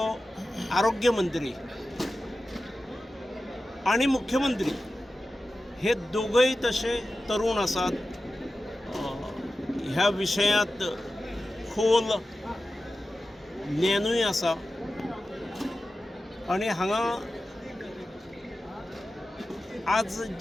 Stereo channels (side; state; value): both; normal; correlation 0.94